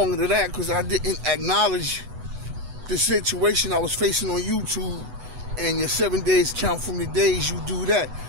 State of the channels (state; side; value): late; left; 8.1 ms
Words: than that, because I didn't acknowledge the situation I was facing on YouTube, and your 7 days count from the days you do that.